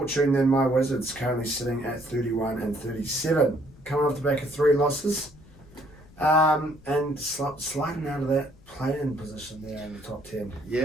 than my Wizards, currently sitting at 31 and 37, coming off the back of 3 losses, and sliding out of that play-in position there in the top 10.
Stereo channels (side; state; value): left; noise; rumble, 24 dB below the sound